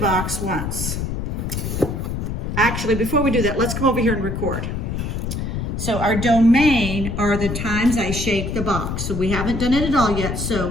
once. Actually, before we do that, let's come over here and record. So our domain are the times I shake the box. So we haven't done it at all yet.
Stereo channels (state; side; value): noise; left; rumble, 3 dB below the sound